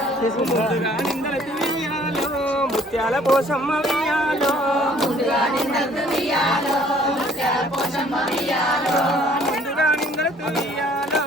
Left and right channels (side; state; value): both; normal; correlation 0.58